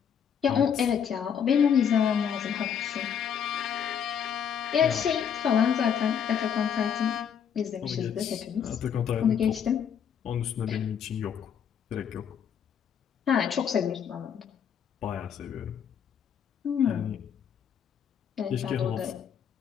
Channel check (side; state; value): right; quieter; 8.0 dB